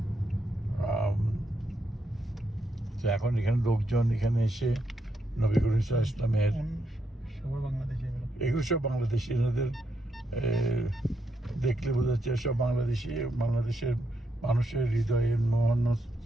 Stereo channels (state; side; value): normal; both; correlation 0.80